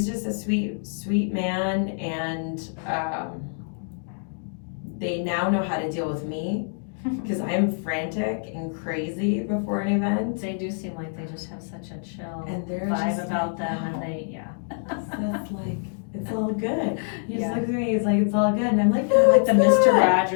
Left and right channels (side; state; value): right; silent; digital silence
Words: just a sweet man, and they now know how to deal with me because I'm frantic and crazy before an event. They do seem like they just have such a chill and vibe about them, and they Seth's like, it's all good. He just looks at me, he's like, it's all good, and I'm like, no, like the Mr.